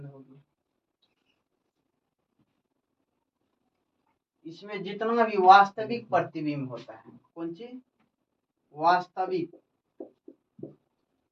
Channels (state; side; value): identical; both; correlation 1.00